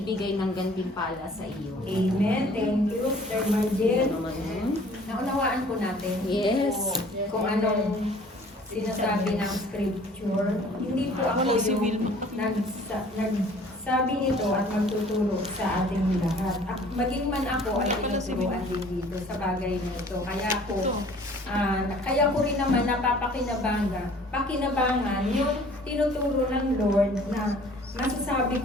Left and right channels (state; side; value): normal; both; correlation 0.52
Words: ng gantimpala sa iyo. Amen. Thank you, Sir Margel. Naunawaan po natin Yes. kung anong sinasabi ng scripture. Hindi po ako yung nagsabi nito at magtuturo sa ating lahat. Maging man ako ay tinuturuan din dito sa bagay na ito. Kaya ko rin naman napapakinabangan yung tinuturo ng Lord na masasabi